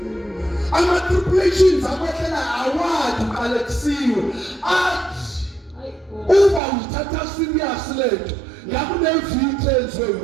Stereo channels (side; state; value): left; drops out; at 6.6 s